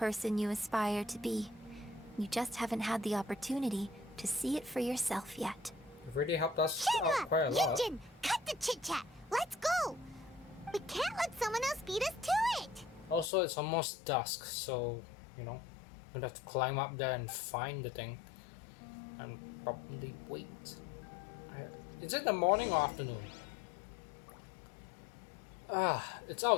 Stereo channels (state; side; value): drops out; right; at 13.3 s